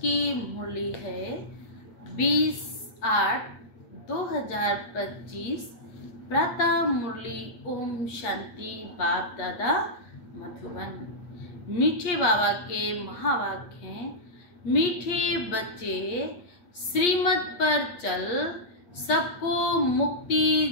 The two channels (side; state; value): right; late; 8.4 ms